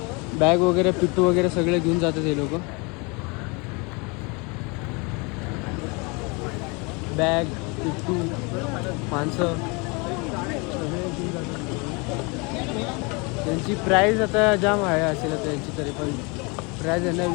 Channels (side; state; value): right; quieter; 29.6 dB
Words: बॅग वगैरे पिट्टू वगैरे सगळे घेऊन जातात हे लोक. बॅग पिट्टू माणसं सगळे घेऊन जातात. त्यांची प्राईज आता जाम आहे असेल त्यांची. तरी पण प्राइस यांना